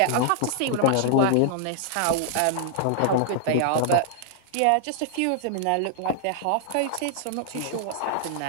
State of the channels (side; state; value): both; different; correlation 0.00